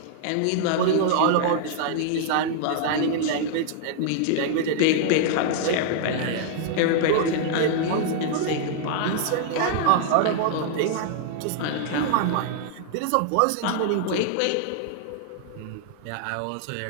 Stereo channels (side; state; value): both; different; correlation -0.01